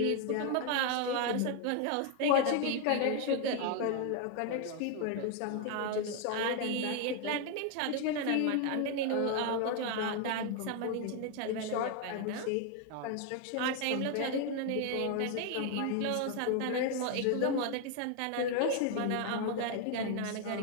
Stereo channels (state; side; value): different; both; correlation 0.01